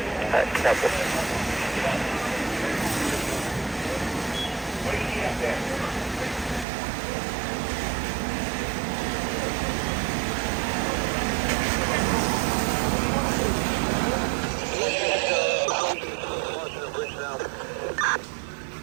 Alright, cancel. What do you see up there?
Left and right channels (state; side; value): drops out; left; at 6.7 s